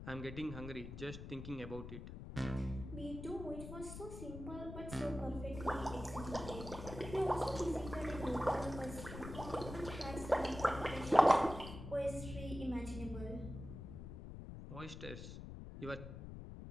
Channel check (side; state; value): left; noise; rumble, 10 dB below the sound